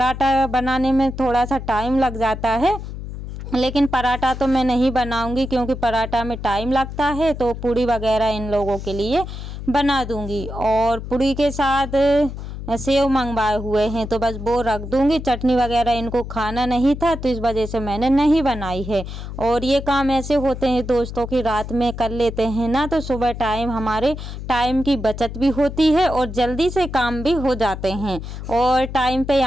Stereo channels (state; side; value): noise; left; hum, 9 dB below the sound